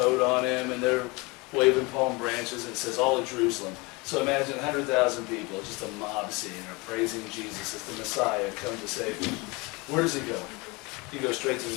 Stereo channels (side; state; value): right; quieter; 26.2 dB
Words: on him, and they're waving palm branches, and it says all of Jerusalem. So imagine 100,000 people, just a mob scene, are praising Jesus as the Messiah come to save them. Where does he go? He goes straight to